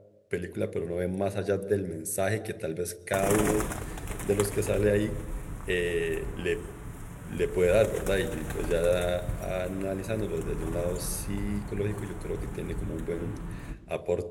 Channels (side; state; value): both; identical; correlation 1.00